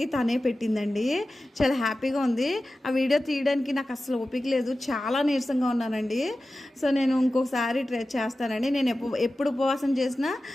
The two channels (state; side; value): normal; both; correlation 0.94